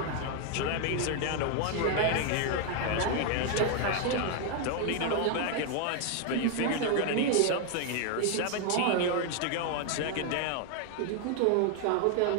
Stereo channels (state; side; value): different; both; correlation 0.01